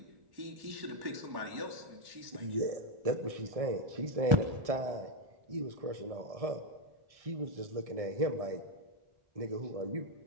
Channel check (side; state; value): left; late; 1.6 ms